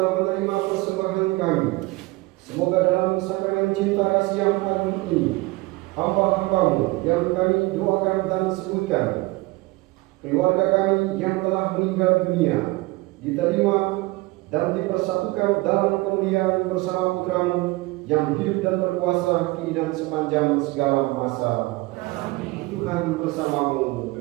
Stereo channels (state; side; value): quieter; left; 22.2 dB